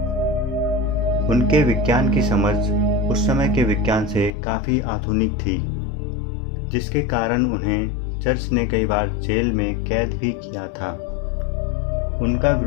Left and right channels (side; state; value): right; drops out; at 4.3 s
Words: उनके विज्ञान की समझ उस समय के विज्ञान से काफ़ी आधुनिक थी, जिसके कारण उन्हें चर्च ने कई बार जेल में कैद भी किया था। उनका